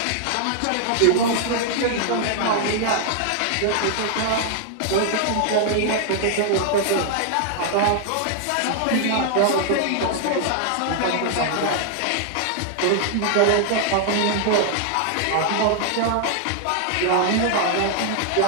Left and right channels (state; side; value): different; both; correlation 0.00